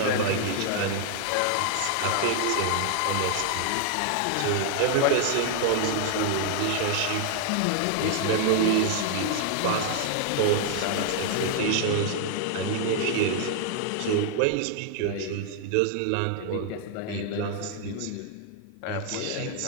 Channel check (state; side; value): different; both; correlation 0.00